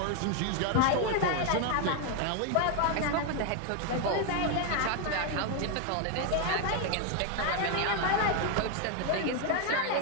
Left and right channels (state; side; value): different; both; correlation 0.01